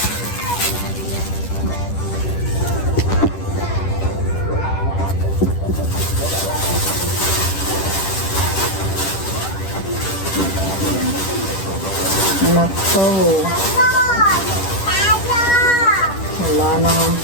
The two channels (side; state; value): right; late; 10 ms